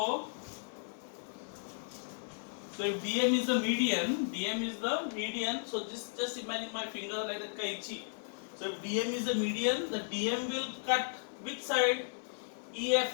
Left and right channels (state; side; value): silent; right; digital silence